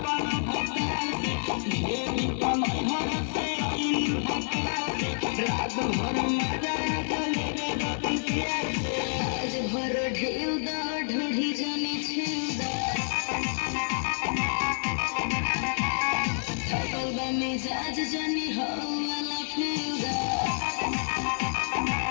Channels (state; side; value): silent; right; 59 dB below the other